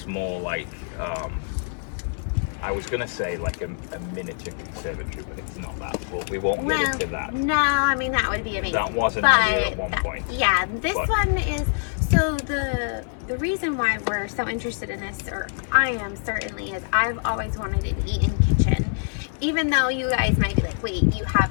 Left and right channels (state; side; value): silent; right; 62 dB below the other